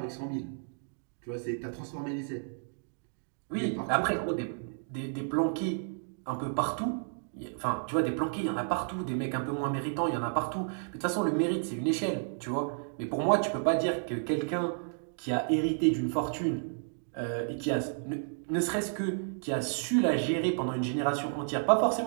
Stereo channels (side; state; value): left; silent; digital silence